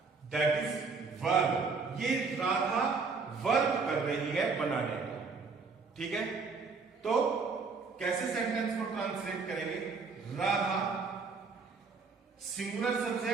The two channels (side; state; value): left; quieter; 4.6 dB